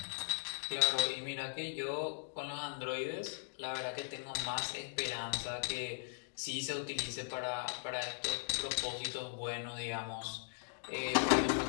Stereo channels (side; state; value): right; silent; digital silence